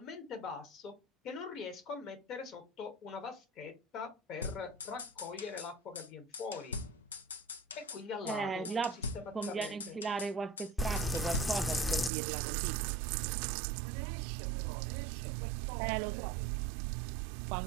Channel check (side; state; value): left; drops out; at 12.1 s